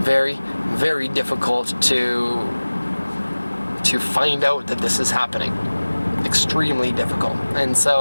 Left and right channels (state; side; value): inverted; both; correlation -1.00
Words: very difficult to find out that this is happening. Extremely difficult. And